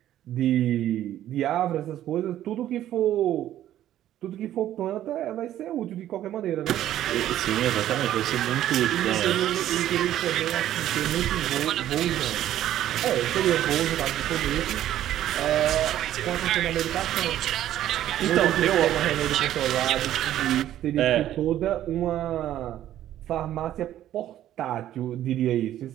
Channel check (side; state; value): left; quieter; 12.4 dB